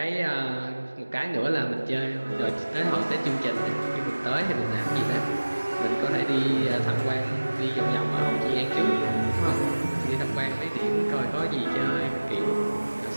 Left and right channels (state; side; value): inverted; both; correlation -1.00